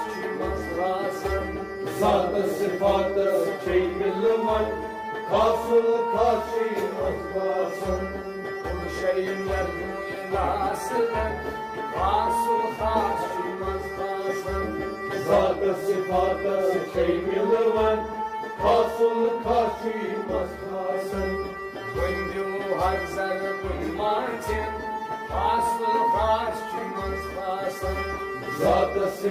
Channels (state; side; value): identical; both; correlation 1.00